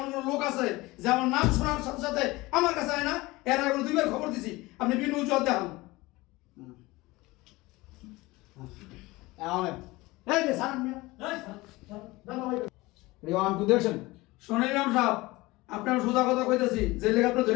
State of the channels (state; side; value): quieter; right; 21.0 dB